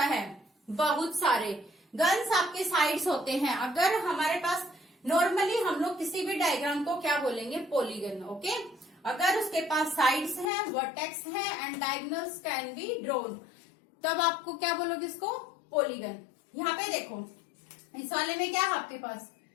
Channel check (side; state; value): right; drops out; at 10.5 s